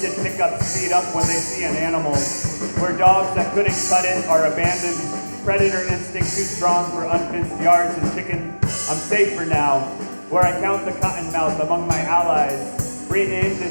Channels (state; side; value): inverted; both; correlation -1.00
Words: pickups speed up when they see an animal, where dogs that couldn't cut it are abandoned, predator instinct too strong for unfenced yards and chicken. I'm safe for now, where I count the cottonmouth among my allies, renamed